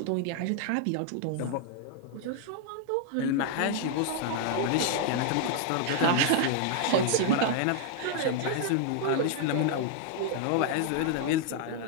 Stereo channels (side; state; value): both; different; correlation 0.00